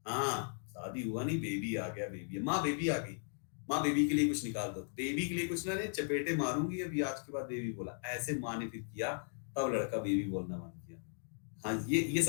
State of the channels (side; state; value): right; silent; digital silence